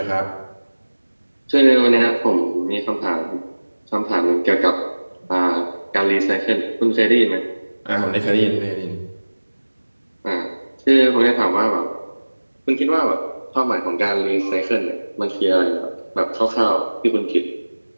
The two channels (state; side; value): inverted; both; correlation -1.00